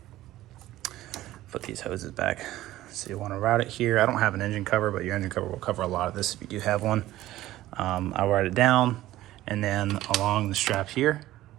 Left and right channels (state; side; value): quieter; left; 15.3 dB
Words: Put these hoses back. So you want to route it here. I don't have an engine cover, but your engine cover will cover a lot of this if you do have one. I'll route it down and then along the strap here.